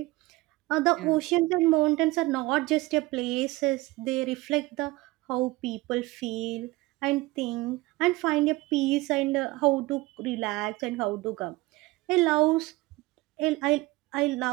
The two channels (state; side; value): quieter; left; 20.9 dB